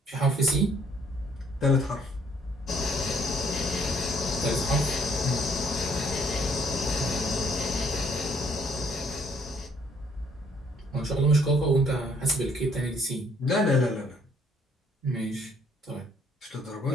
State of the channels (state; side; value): normal; both; correlation 0.64